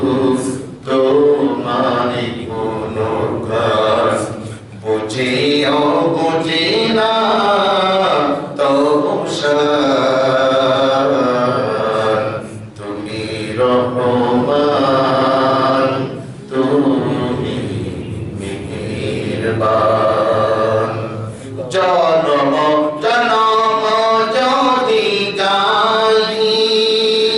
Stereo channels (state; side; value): identical; both; correlation 1.00